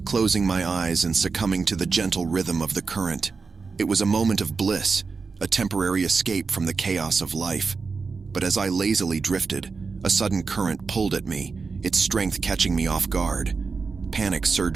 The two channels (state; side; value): quieter; left; 4.7 dB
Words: closing my eyes and succumbing to the gentle rhythm of the current. It was a moment of bliss, a temporary escape from the chaos of life. But as I lazily drifted, a sudden current pulled at me, its strength catching me off guard. Panic